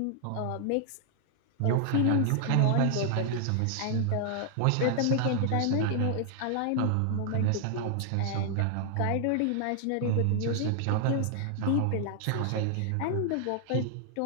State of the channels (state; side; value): different; both; correlation 0.00